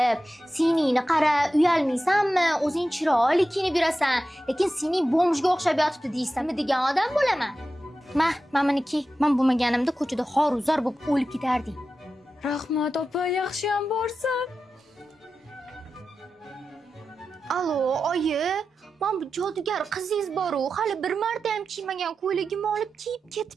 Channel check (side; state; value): both; normal; correlation 0.92